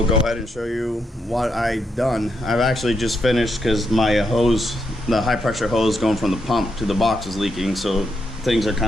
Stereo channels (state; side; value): normal; both; correlation 0.81